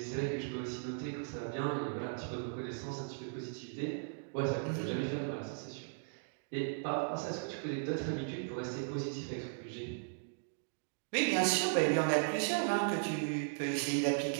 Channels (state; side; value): silent; left; digital silence